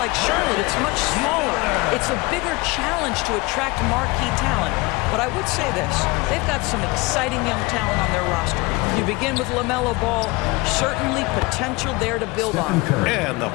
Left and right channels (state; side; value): quieter; right; 23.9 dB